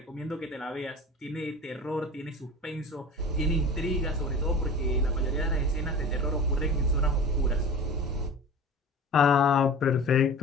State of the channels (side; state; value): both; normal; correlation 0.36